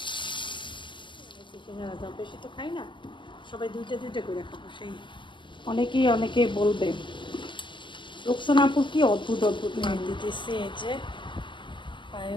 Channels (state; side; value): late; right; 0.24 ms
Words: বেশি তো খাই না, সবাই দুইটা দুইটা করে খাবো। সেই অনেকে বলবে রোকসানাপুর কি অদ্ভুত অদ্ভুত নাম দিতেছে। এই যে